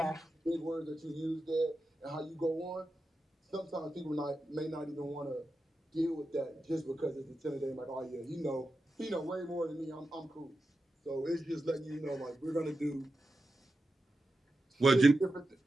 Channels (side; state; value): both; normal; correlation 0.91